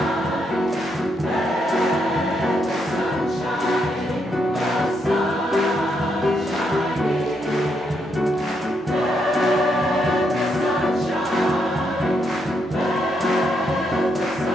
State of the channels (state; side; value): normal; both; correlation 0.78